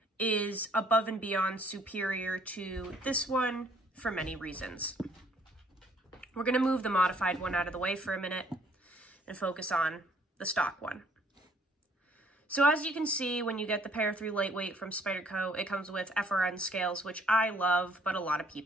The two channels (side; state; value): both; normal; correlation 0.61